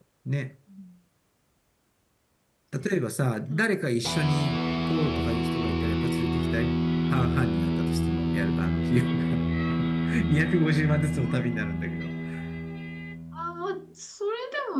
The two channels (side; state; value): both; identical; correlation 1.00